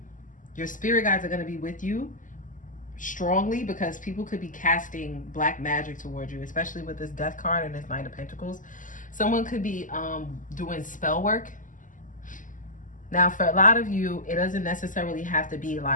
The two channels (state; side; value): late; right; 0.38 ms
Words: your spirit guides are going to be with you strongly, because people could be casting black magic towards you, especially with this death card and this Knight of Pentacles. Someone could be doing spell work. Now, for a lot of you, it doesn't necessarily have to be